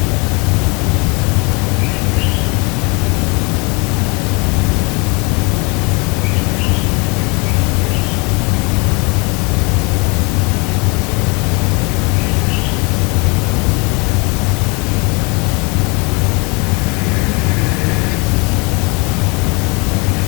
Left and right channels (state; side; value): quieter; right; 29.6 dB